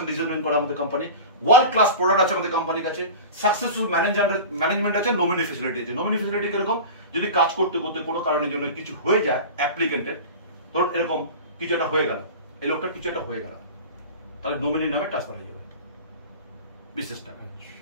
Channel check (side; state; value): both; inverted; correlation -0.32